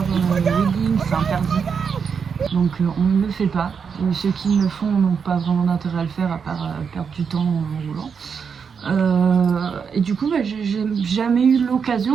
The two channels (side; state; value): left; quieter; 6.3 dB